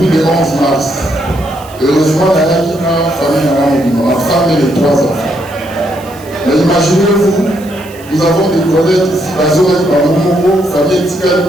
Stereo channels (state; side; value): noise; right; hiss, 22 dB below the sound